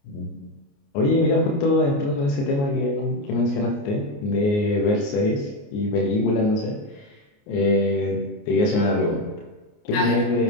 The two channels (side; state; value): right; late; 29 ms